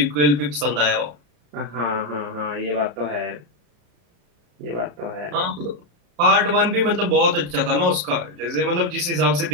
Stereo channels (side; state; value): left; late; 34 ms